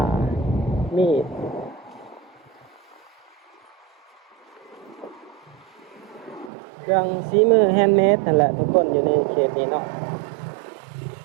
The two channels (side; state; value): left; drops out; at 6.5 s